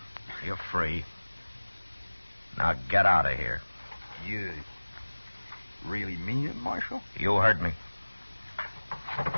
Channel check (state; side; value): inverted; both; correlation -1.00